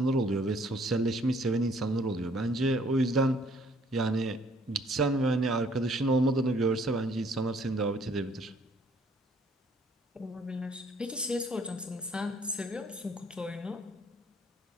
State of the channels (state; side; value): normal; both; correlation 0.62